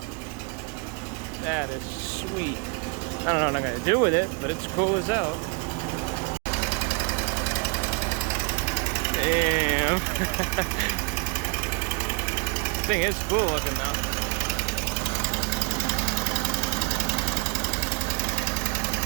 That is sweet. I don't know what I'm gonna do with it, but it's cool as hell. Damn. Thing is cool looking though.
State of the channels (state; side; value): quieter; left; 31.5 dB